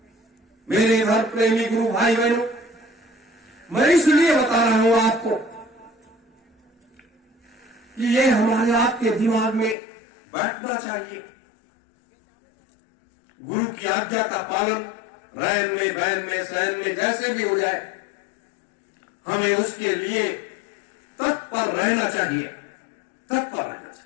मेरे धर्म प्रेमी गुरु भाई बहनों, मैं इसलिए बता रहा हूं आपको कि ये हमारे आपके दिमाग में बैठना चाहिए। गुरु की आज्ञा का पालन रैन में, बैन में, सैन में जैसे भी हो जाए, हमें उसके लिए तत्पर रहना चाहिए, तत्पर रहना चाहिए।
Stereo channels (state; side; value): drops out; right; at 9.8 s